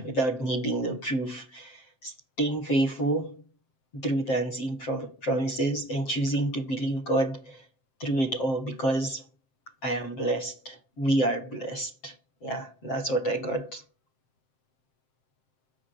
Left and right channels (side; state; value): right; late; 7.6 ms